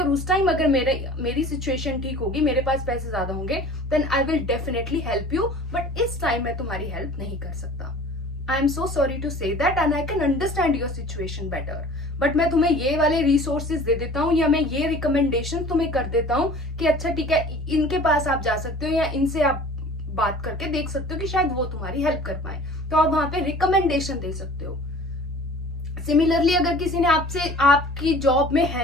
उस टाइम अगर मेरी सिचुएशन ठीक होगी, मेरे पास पैसे ज्यादा होंगे, then I will definitely help you, but इस टाइम मैं तुम्हारी हेल्प नहीं कर सकता। I am so sorry to say that and I can understand your situation better, but मैं तुम्हें ये वाले रिसोर्सेज दे देता हूँ या मैं ये रिकमेंडेशन तुम्हें कर देता हूँ कि अच्छा ठीक है, इनके पास आप जा सकते हो या इनसे आप बात करके देख सकते हो कि शायद वो तुम्हारी हेल्प कर पाए। तो आप वहां पे रिकमेंडेशन दे सकते हो। सिमिलरली, अगर किसी ने आपसे, आपकी जॉब में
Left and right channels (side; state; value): both; normal; correlation 0.45